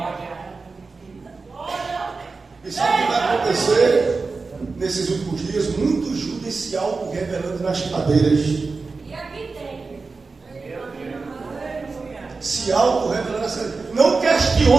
E sabe o que vai acontecer nesses últimos dias? Muitos Judas se auto-revelando nas cadeiras. Se auto-revelando nas cadeiras. Não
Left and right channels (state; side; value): quieter; left; 4.2 dB